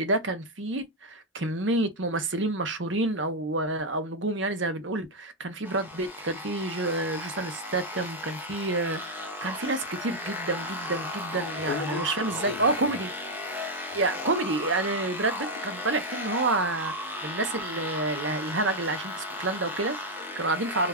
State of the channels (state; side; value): normal; both; correlation 0.01